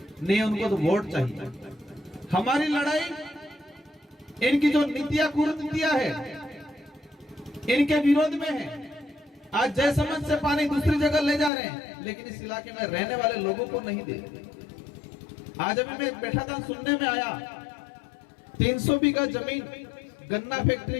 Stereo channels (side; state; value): right; drops out; at 11.5 s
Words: नहीं, उनको तो वोट चाहिए। हमारी लड़ाई इनकी जो नीतियां कुरीतियां है इनके विरोध में है। आज जयसमंद से पानी दूसरी जगह ले जा रहे हैं, लेकिन इस इलाके में रहने वाले लोगों को नहीं दे रहे। आज अभी मैं बैठा था, सुनने में आया 300 बीघा जमीन गन्ना फैक्ट्री